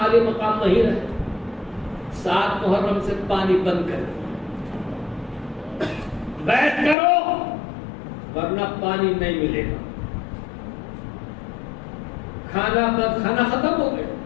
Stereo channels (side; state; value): right; drops out; at 7.0 s